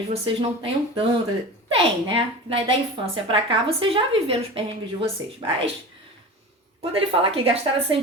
vocês não tenham tanto. Tem, né? Da infância para cá, vocês já viveram os perrengues de vocês. Mas, quando ele fala que gastaram essas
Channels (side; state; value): both; normal; correlation 0.32